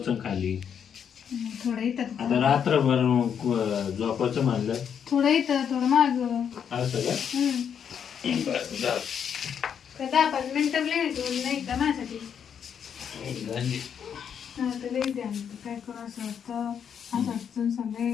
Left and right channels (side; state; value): right; quieter; 7.9 dB